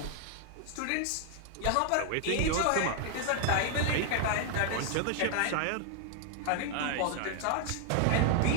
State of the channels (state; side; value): different; both; correlation 0.00